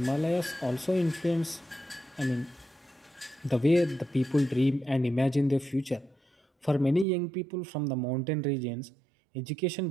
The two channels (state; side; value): drops out; left; at 7.1 s